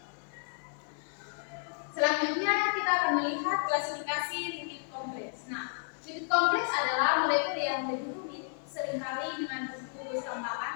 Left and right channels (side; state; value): right; silent; 56 dB below the other